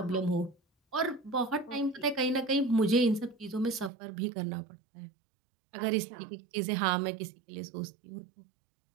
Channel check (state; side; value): drops out; left; at 3.9 s